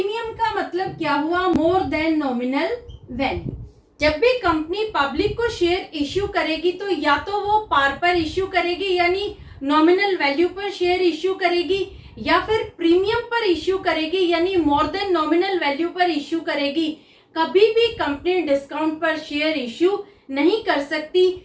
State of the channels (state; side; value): identical; both; correlation 1.00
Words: का मतलब क्या हुआ, मोर देन नॉमिनल वैल्यू। जब भी कंपनी पब्लिक को शेयर इश्यू करेगी तो या तो वो पार पर इश्यू करेगी, यानी नॉमिनल वैल्यू पर शेयर इश्यू करेगी, या फिर प्रीमियम पर इश्यू करेगी, यानी मोर देन नॉमिनल वैल्यू पर इश्यू करेगी। कभी भी कंपनी डिस्काउंट पर शेयर इश्यू नहीं कर सकती,